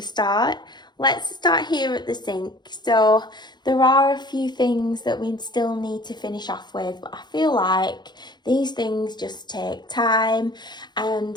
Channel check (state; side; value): late; right; 0.21 ms